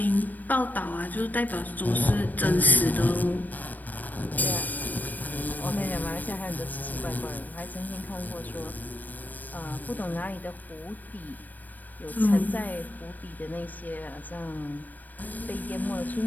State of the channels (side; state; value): right; late; 0.086 ms